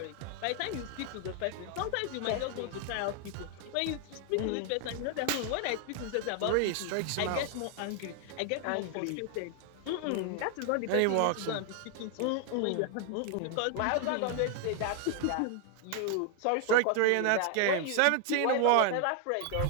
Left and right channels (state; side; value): different; both; correlation 0.00